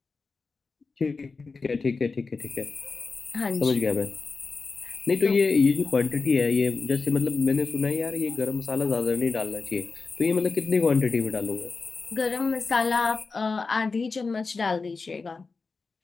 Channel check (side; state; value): right; quieter; 4.3 dB